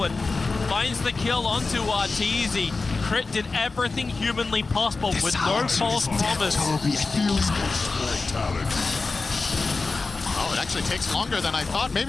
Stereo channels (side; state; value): right; quieter; 3.9 dB